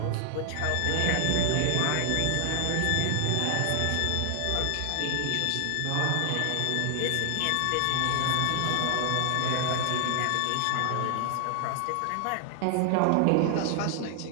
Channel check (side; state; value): both; different; correlation 0.00